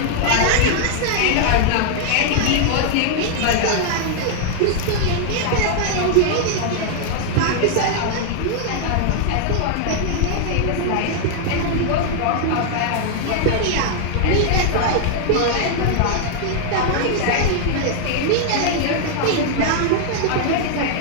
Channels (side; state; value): both; different; correlation 0.00